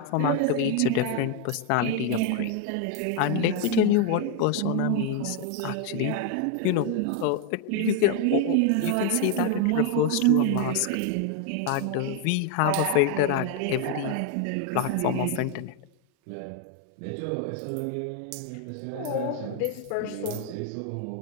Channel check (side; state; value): both; different; correlation 0.01